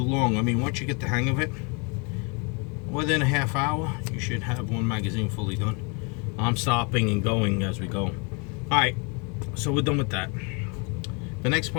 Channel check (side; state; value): right; quieter; 30.6 dB